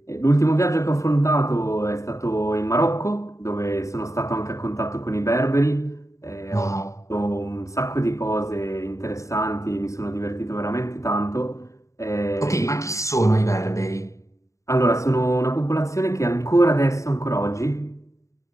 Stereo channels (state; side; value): late; right; 0.15 ms